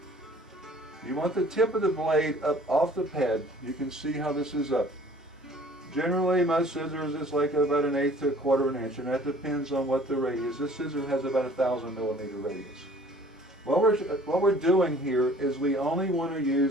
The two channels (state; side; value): normal; both; correlation 0.52